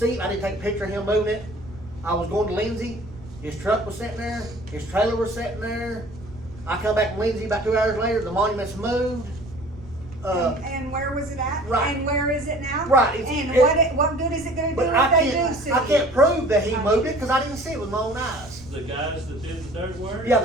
picture of him moving it. I was going to Lindsay, his truck was sitting there, his trailer was sitting there. I come back from Lindsay about 2 hours later, the monument's moved. And where was it at? Right. And where is it now? Right, And it- what good is it gonna do But if they do sue I you? can't prove that he moved it, cause I didn't see it with my own eyes. The guys that did the dirt work? Yeah,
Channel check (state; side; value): noise; right; rumble, 18 dB below the sound